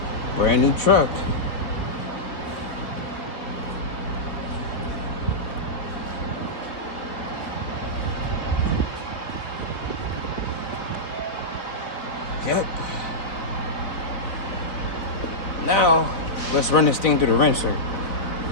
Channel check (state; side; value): late; right; 4.2 ms